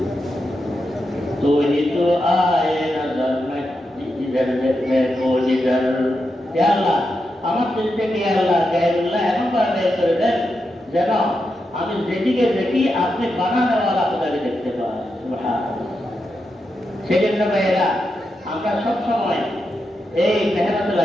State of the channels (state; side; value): normal; both; correlation 0.86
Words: तो ही तो आए नजर में जिधर में को जिधर। या अल्लाह আমার দিল থেকে আল্লাহ গায়রুল্লাহ এমন ভাবে বের করে দেন যেন আমি যেদিকে দেখি আপনি বানানোওয়ালা খোদাকে দেখতে পাই। সুবহানাল্লাহ। সেজন্য ভাইয়েরা আমরা সবসময় এই মেহনত